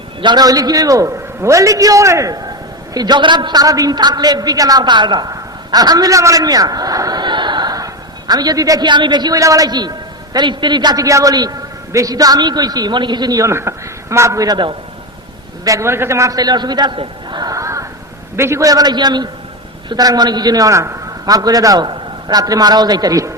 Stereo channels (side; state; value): both; normal; correlation 0.16